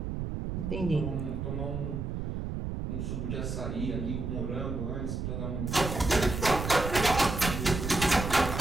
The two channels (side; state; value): right; noise; rumble, 4 dB below the sound